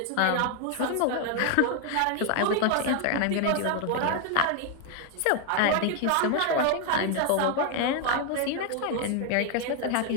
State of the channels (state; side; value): different; both; correlation 0.00